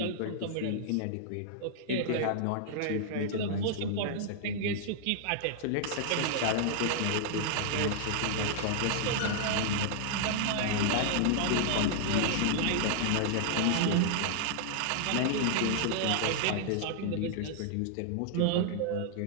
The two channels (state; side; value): different; both; correlation -0.01